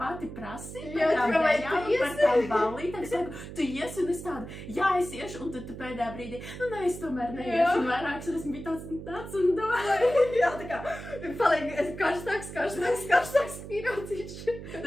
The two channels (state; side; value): noise; right; hum, 11 dB below the sound